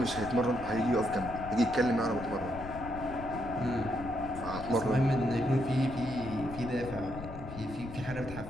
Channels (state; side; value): noise; left; rumble, 11 dB below the sound